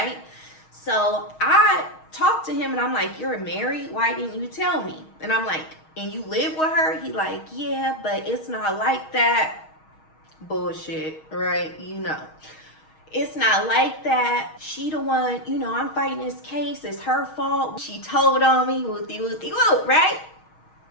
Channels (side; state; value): right; late; 6.4 ms